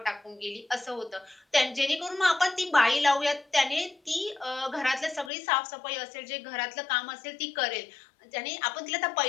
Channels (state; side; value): drops out; right; at 5.3 s